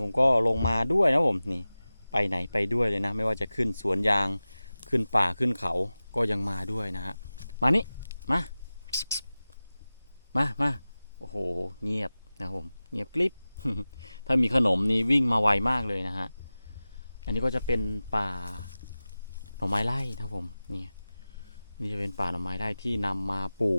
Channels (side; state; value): both; inverted; correlation -0.96